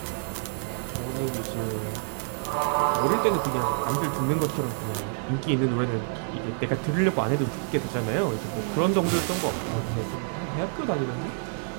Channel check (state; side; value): silent; left; 60 dB below the other